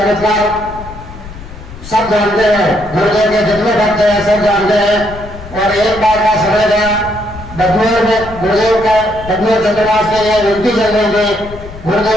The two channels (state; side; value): noise; left; rumble, 15 dB below the sound